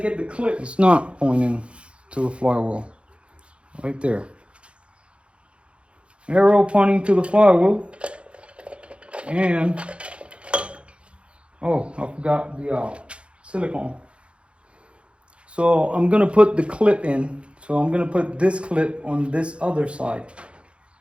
the clip. It's not pointing to the flywheel. Right there. Arrow pointing to the flywheel. And, oh, I forgot the silicone. So I'm gonna put the clip in. So I'm gonna put this clip on this other side.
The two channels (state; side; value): late; left; 0.059 ms